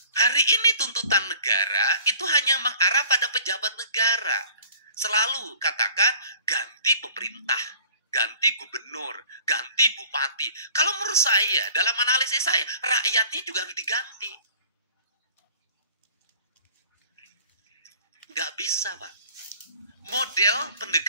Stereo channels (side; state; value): both; inverted; correlation -0.50